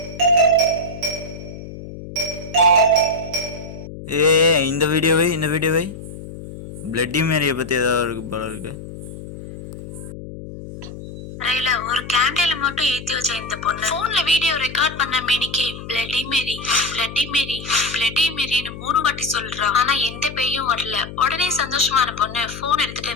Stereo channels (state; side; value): noise; left; hum, 12 dB below the sound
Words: இந்த வீடியோவை பிளட்டி மேரியை பற்றி ஏதாவது இருக்கு போல இருக்கு. ஒரு கேண்டில மட்டும் ஏத்தி வச்ச இந்த பொண்ணு போன்ல வீடியோ ரெக்கார்ட் பண்ண மேனிக்கு bloody Mary bloody Mary bloody மேரின்னு 3 வாட்டி சொல்றா. ஆனா எந்த பேயும் வரல. உடனே சந்தோஷமான பொண்ணு போன் எடுத்துட்டு,